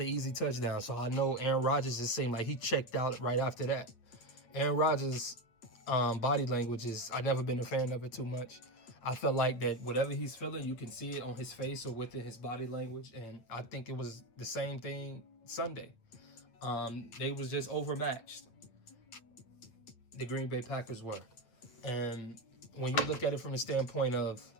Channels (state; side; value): late; right; 8.9 ms